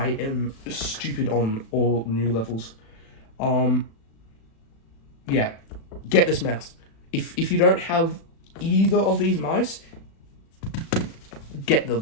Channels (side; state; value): right; late; 36 ms